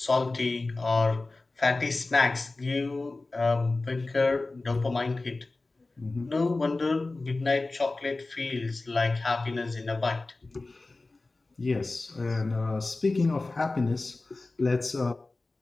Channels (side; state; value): right; quieter; 3.3 dB